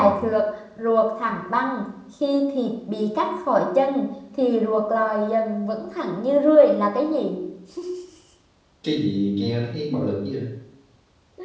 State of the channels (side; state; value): both; identical; correlation 1.00